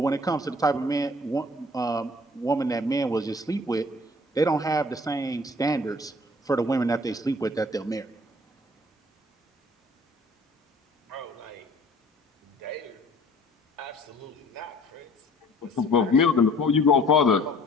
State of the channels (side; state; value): both; normal; correlation 0.53